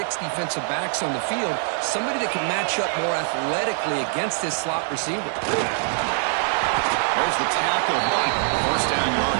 defensive backs on the field, somebody that can match up more athletically against this slot receiver. There's the tackle, but 1st down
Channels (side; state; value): left; silent; 57 dB below the other